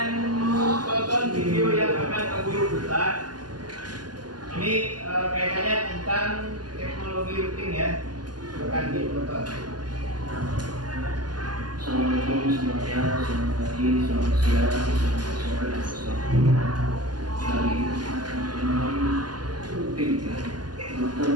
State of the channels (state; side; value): late; left; 0.70 ms